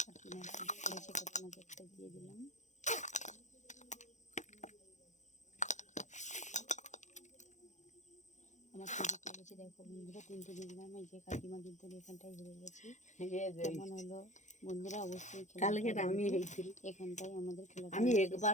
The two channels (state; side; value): late; right; 0.35 ms